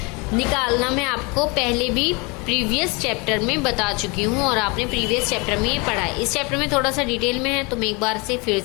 निकालना मैं आपको पहले भी प्रीवियस चैप्टर में बता चुकी हूँ और आपने प्रीवियस चैप्टर में ये पढ़ा है। इस चैप्टर में थोड़ा सा डिटेल में है तो मैं एक बार से फिर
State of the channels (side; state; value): right; quieter; 28.7 dB